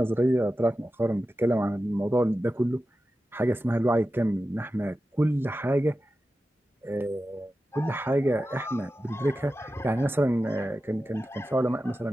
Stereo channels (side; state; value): both; normal; correlation 0.93